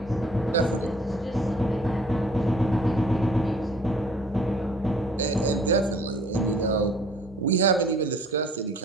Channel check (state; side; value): normal; both; correlation 0.55